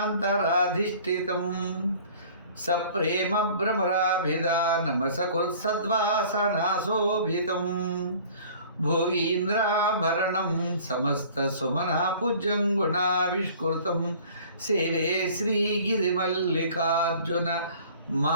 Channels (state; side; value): inverted; both; correlation -0.49